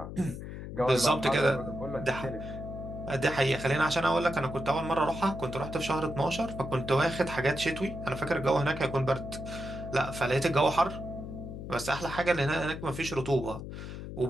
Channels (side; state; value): left; noise; hum, 9 dB below the sound